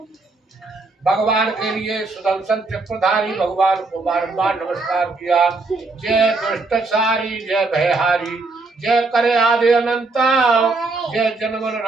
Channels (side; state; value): left; quieter; 3.6 dB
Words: भगवान के लिए सुदर्शन चक्रधारी भगवान को बारंबार नमस्कार किया। जय दुष्ट सारी जय भयहारी, जय करे आदि अनंता, जय जन्म